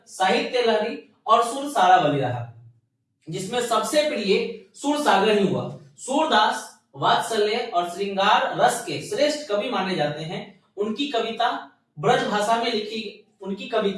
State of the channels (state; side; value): identical; both; correlation 1.00